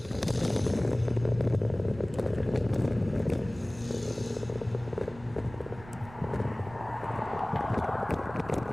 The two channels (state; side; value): noise; right; rumble, 19 dB below the sound